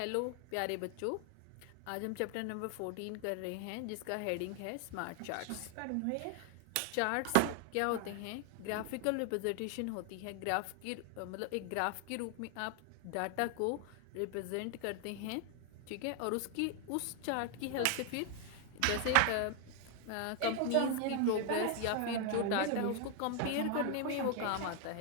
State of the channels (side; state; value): both; different; correlation 0.00